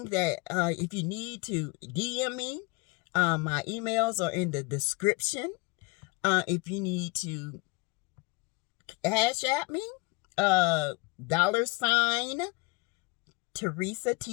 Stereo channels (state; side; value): quieter; right; 27.0 dB